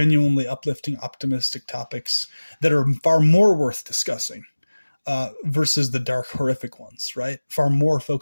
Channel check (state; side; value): inverted; both; correlation -1.00